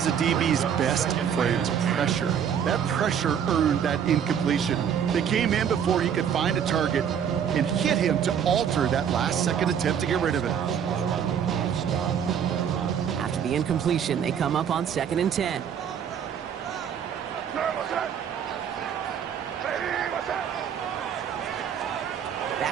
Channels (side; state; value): left; quieter; 8.3 dB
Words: a DB's best friend, pressure. That pressure earned that incompletion. They came in before he could find a target and hit him to alter that last-second attempt to get rid of it. After the incompletion, they come up on 2nd and 10.